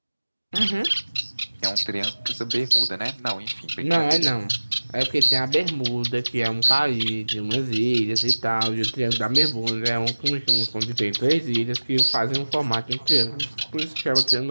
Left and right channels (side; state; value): both; inverted; correlation -1.00